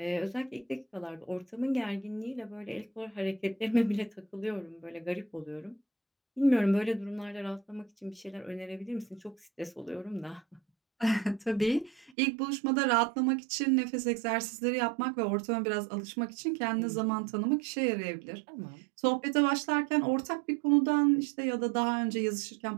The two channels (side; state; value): left; drops out; at 12.1 s